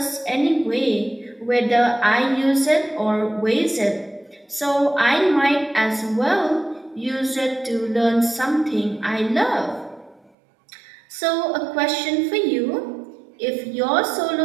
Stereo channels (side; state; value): left; drops out; at 10.3 s